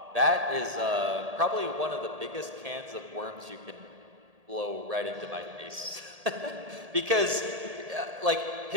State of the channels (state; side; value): late; left; 1.8 ms